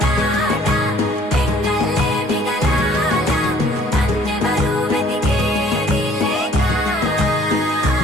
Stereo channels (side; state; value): both; normal; correlation 0.58